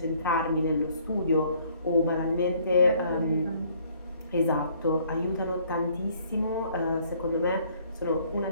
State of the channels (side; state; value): both; inverted; correlation -0.62